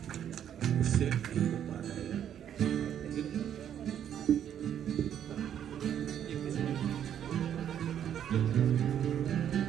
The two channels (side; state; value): left; quieter; 9.7 dB